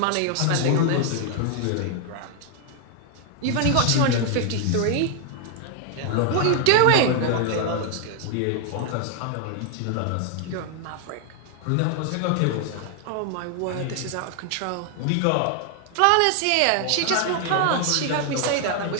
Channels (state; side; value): different; both; correlation 0.00